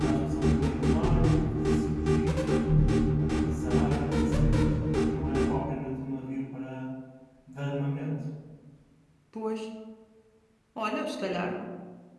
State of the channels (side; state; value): both; identical; correlation 1.00